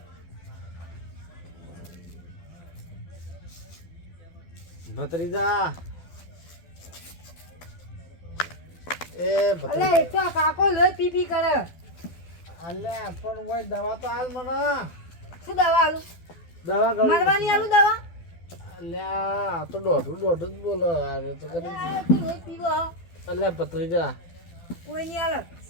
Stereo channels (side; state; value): right; late; 12 ms